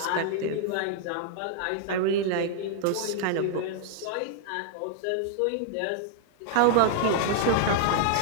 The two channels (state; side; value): different; both; correlation -0.01